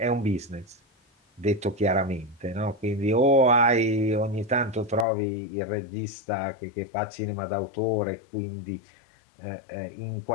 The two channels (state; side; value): drops out; right; at 5.1 s